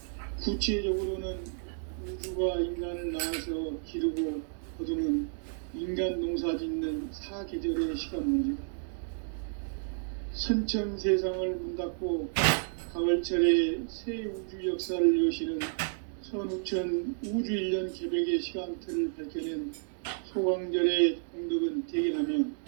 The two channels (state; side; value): silent; left; digital silence